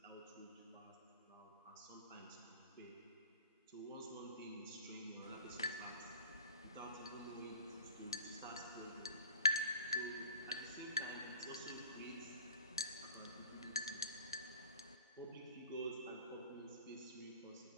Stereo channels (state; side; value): inverted; both; correlation -0.39